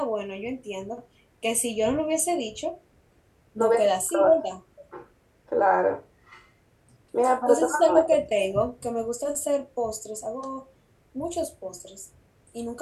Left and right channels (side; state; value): both; identical; correlation 1.00